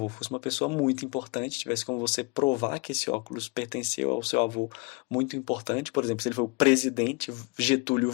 fosse uma pessoa muito importante, tivesse como você provar que esse óculos pertenceu ao seu avô muito importante, por exemplo, se ele foi o presidente Getúlio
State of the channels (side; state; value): right; quieter; 26.3 dB